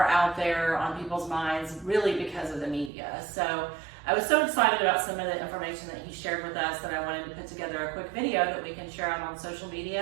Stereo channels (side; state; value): left; drops out; at 2.9 s